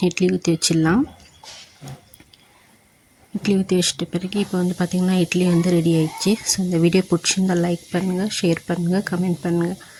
இட்லி ஊற்றி வச்சிடலாம். இட்லி ஊற்றி வச்சிட்ட பிறகு இப்போ வந்து பார்த்திங்கன்னா இட்லி வந்து ரெடி ஆயிடுச்சு. இந்த வீடியோ பிடிச்சிருந்தால் லைக் பண்ணுங்கள், ஷேர் பண்ணுங்கள், கமெண்ட் பண்ணுங்கள்.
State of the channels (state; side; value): identical; both; correlation 1.00